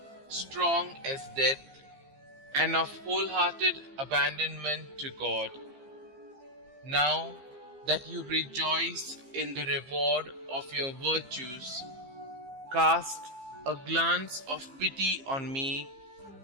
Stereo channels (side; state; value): left; late; 15 ms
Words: strong as death, and of wholehearted abandonment to God. Now that you rejoice in the reward of your virtues, cast a glance of pity on me